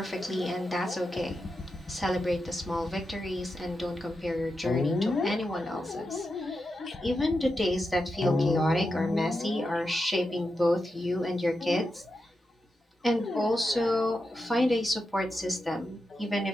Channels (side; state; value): both; normal; correlation 0.88